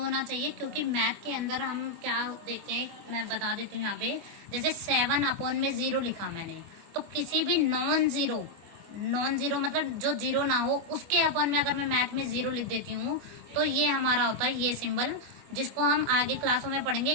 होना चाहिए? क्योंकि मैथ के अंदर हम क्या देखते हैं, मैं बता देती हूँ यहाँ पे, जैसे 7 अपॉन में 0 लिखा मैंने, तो किसी भी नॉन जीरो मतलब जो जीरो ना हो, उसके अपॉन में अगर मैं मैथ में 0 लिख देती हूँ, तो ये हमारा होता है ये सिंबल, जिसको हम आगे क्लासों में पढ़ेंगे।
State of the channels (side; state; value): left; late; 25 ms